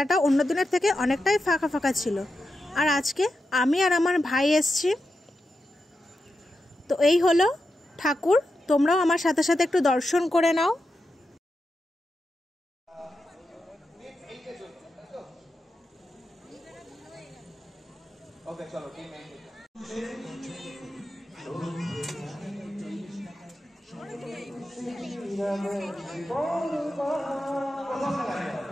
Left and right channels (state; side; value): normal; both; correlation 0.89